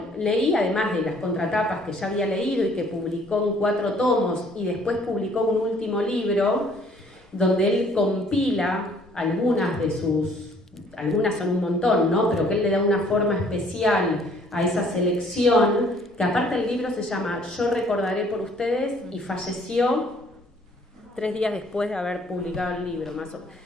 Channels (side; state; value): both; normal; correlation 0.60